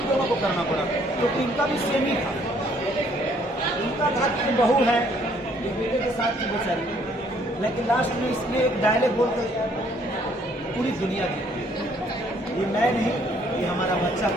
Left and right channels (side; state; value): both; normal; correlation 0.64